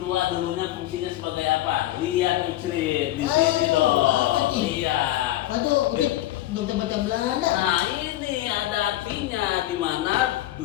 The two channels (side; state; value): right; quieter; 14.7 dB